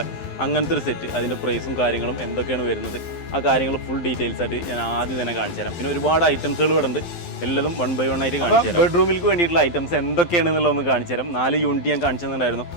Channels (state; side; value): late; right; 12 ms